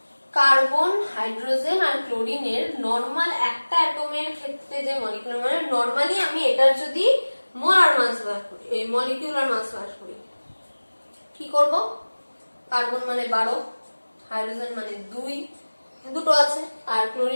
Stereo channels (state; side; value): inverted; both; correlation -1.00